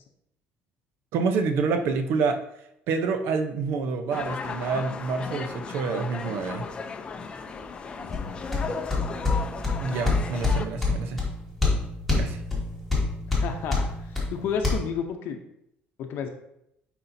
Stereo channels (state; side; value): normal; both; correlation 0.58